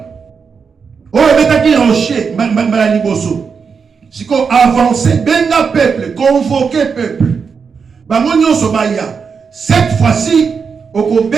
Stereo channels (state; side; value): quieter; left; 5.8 dB